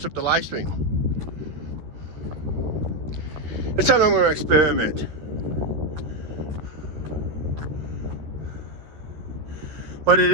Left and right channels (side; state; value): left; late; 13 ms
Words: up the live stream. It's something I'm going to experiment. But it